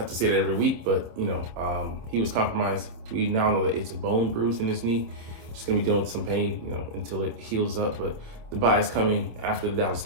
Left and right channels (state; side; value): late; left; 26 ms